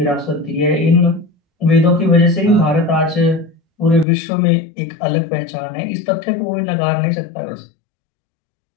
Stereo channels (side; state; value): right; drops out; at 4.0 s